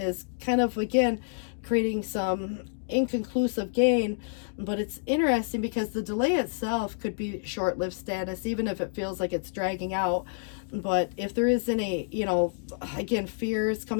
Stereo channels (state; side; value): silent; right; digital silence